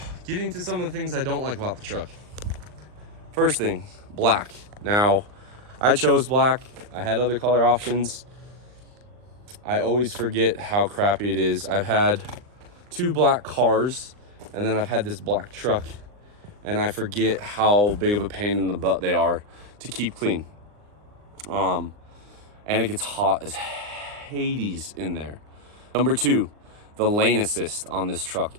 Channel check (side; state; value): left; late; 39 ms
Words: getting to some of the things I don't like about the truck. First thing, black. Now, I chose black. I had other color options. I always forget how crappy it is. I've had 2 black cars, and then I've had this black truck, and I forget how big of a pain in the butt they are to keep clean. And it gets hot as Hades in there. Number 2, the lane assist on this truck